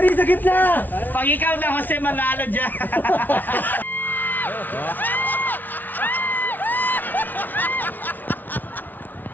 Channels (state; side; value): late; right; 0.085 ms